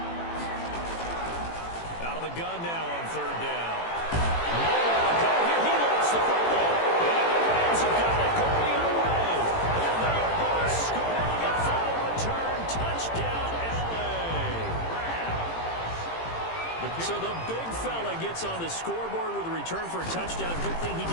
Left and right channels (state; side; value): late; right; 18 ms